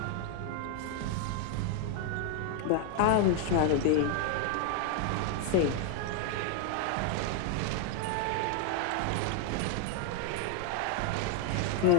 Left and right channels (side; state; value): both; different; correlation 0.00